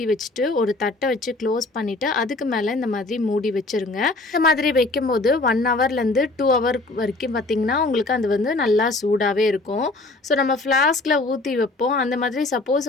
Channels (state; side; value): quieter; right; 3.1 dB